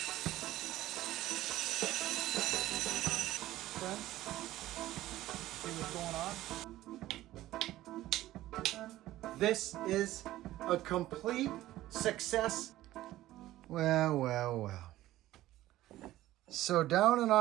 Friends, see what's going on? This is a complete success. Well. So down in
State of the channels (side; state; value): left; quieter; 15.3 dB